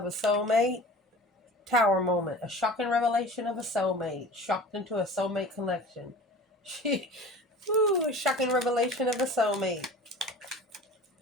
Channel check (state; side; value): normal; both; correlation 0.39